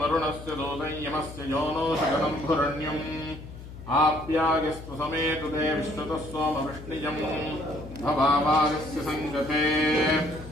वरुणस्य दूतं यमस्य YONO शकलं भुरण्यम् आप्यायस्तु समेतु ते विश्वतः सोमवृष्णिजम् भवावागस्य सङ्गते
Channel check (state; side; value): noise; left; hum, 14 dB below the sound